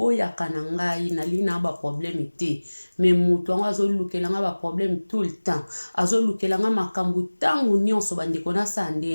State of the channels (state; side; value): inverted; both; correlation -1.00